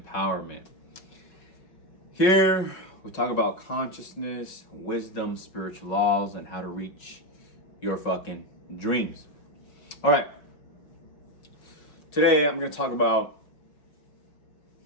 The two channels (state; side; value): late; right; 5.4 ms